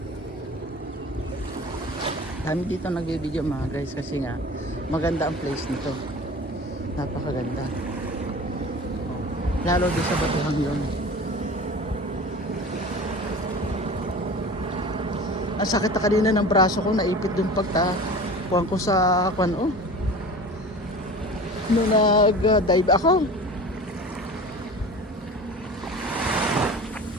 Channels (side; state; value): both; normal; correlation 0.37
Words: Dami dito nagbibideo, mga guys, kasi nga maganda ang place nito. Napakaganda. Lalo din sa Batuhang yun. Ang sakit na kanina ng braso ko, naipit dun pagtakuhan ko sa kwan, oh. Nung nag-dive ako.